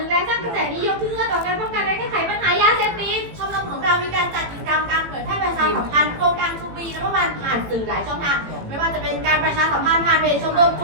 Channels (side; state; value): left; late; 18 ms